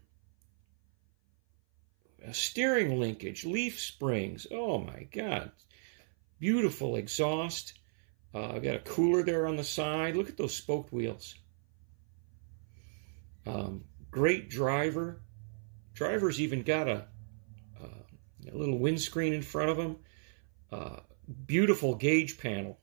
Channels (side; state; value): left; silent; 55 dB below the other